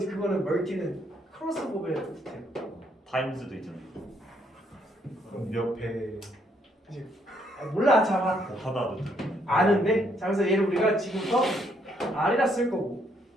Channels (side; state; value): both; normal; correlation 0.71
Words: 멀티는 크로스오버의 뜻이에요. 타임즈도 있잖아. 그럼 몇 배? 몰라 잡아. 하다도 아는데 자 그래서 얘를 우리가 지금부터 R이라 쓸 거고